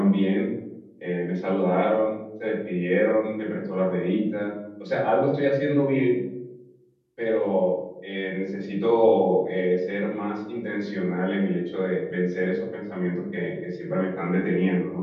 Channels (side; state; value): both; identical; correlation 1.00